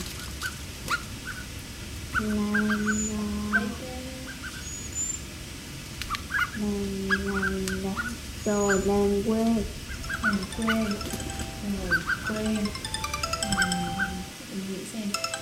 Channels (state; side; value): identical; both; correlation 1.00